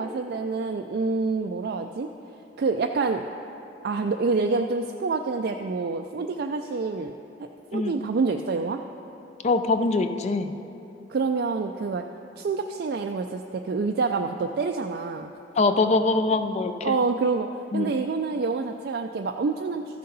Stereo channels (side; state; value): both; normal; correlation 0.14